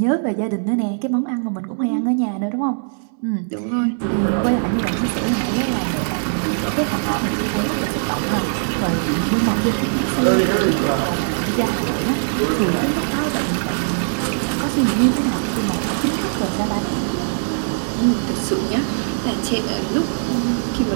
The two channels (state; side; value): silent; left; digital silence